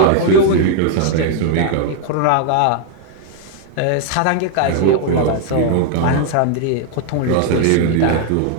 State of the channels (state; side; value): different; both; correlation 0.00